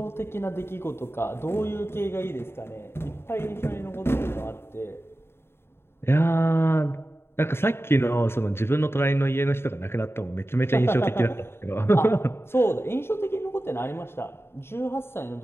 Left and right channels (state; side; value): late; right; 0.11 ms